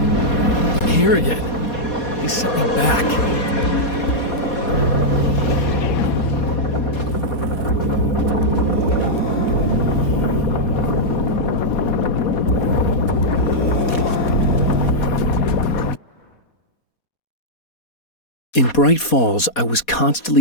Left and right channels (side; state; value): right; late; 4.2 ms